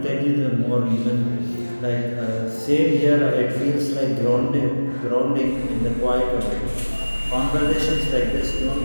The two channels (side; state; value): both; inverted; correlation -1.00